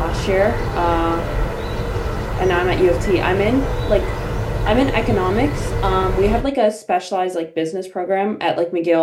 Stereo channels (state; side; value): identical; both; correlation 1.00